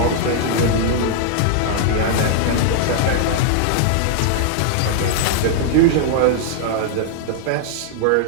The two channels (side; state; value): both; different; correlation -0.01